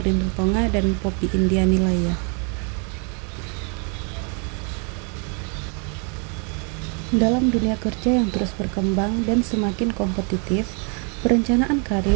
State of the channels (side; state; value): left; quieter; 36.9 dB